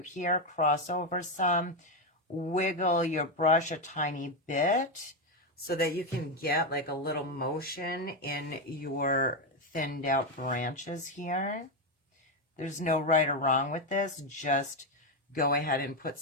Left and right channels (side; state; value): both; normal; correlation 0.08